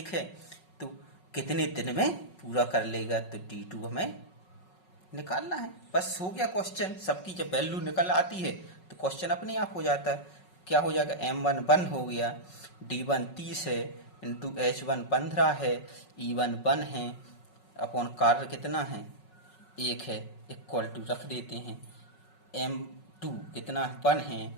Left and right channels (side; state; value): right; late; 5.4 ms